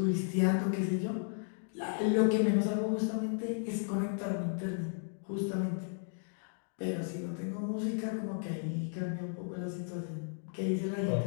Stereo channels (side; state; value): right; silent; digital silence